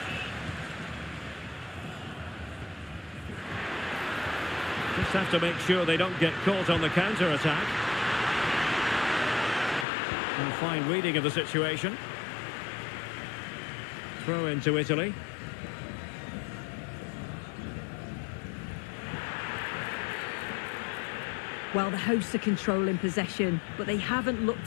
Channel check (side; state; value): right; drops out; at 9.9 s